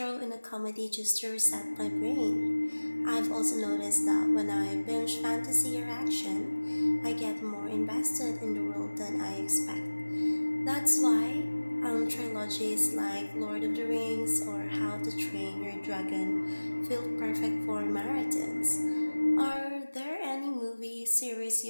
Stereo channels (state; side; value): inverted; both; correlation -1.00